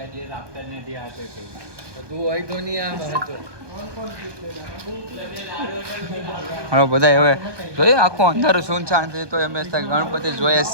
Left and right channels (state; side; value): late; left; 1.2 ms